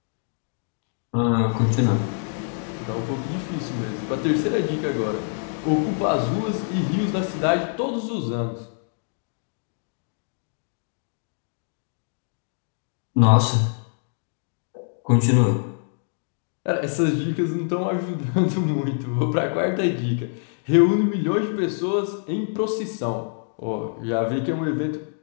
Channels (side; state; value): right; silent; digital silence